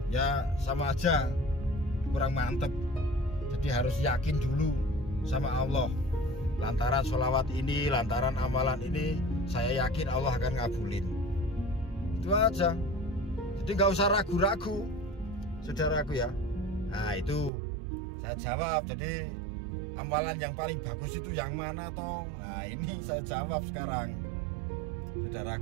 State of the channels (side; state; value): left; drops out; at 17.5 s